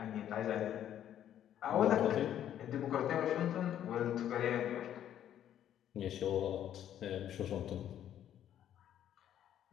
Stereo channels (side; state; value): right; quieter; 10.7 dB